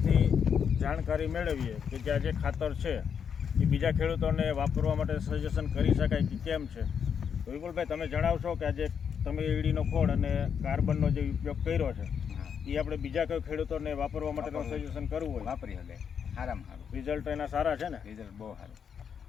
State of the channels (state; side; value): quieter; right; 7.3 dB